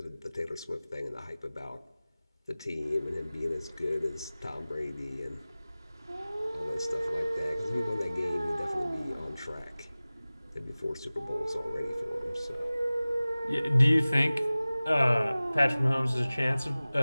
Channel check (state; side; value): inverted; both; correlation -0.98